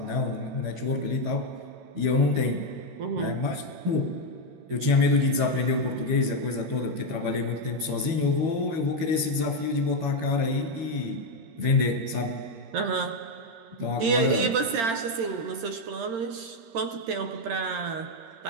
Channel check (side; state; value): left; late; 13 ms